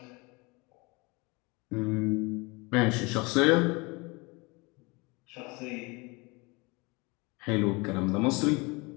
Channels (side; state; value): right; quieter; 26.7 dB